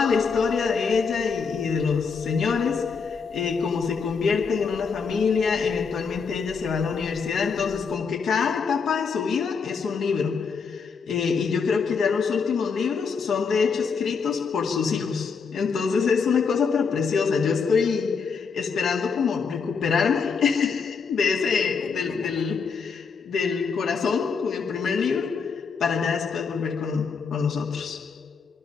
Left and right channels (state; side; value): quieter; right; 5.5 dB